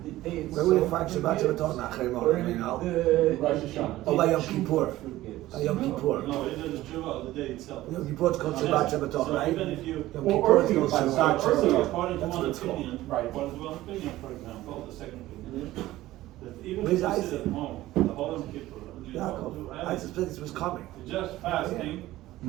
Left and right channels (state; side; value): quieter; left; 16.1 dB